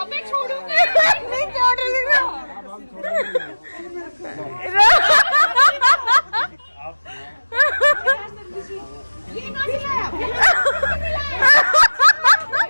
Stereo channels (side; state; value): both; inverted; correlation -1.00